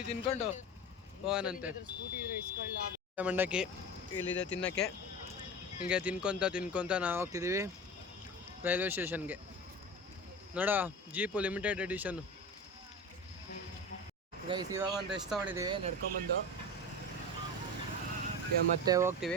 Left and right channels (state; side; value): normal; both; correlation 0.29